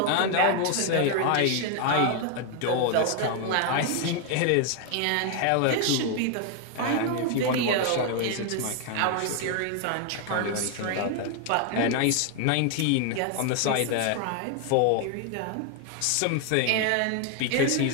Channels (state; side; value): different; both; correlation 0.00